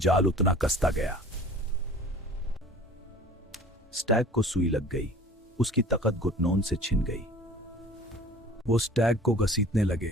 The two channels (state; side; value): normal; both; correlation 0.45